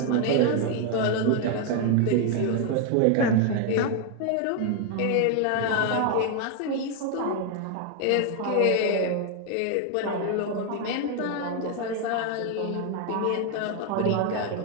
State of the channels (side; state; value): both; different; correlation 0.01